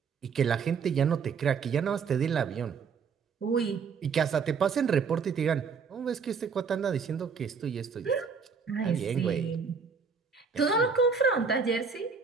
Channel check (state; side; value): quieter; left; 5.7 dB